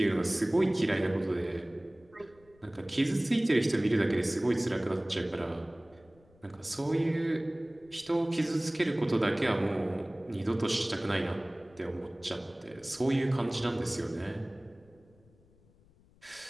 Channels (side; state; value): left; noise; rumble, 29 dB below the sound